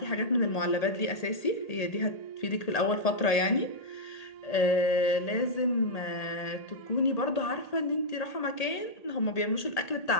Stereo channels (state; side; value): late; right; 1.8 ms